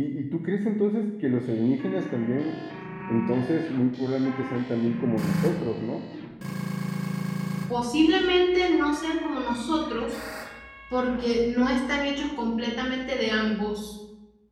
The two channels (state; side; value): identical; both; correlation 1.00